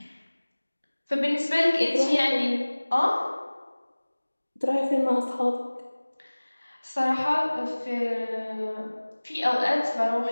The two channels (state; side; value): inverted; both; correlation -1.00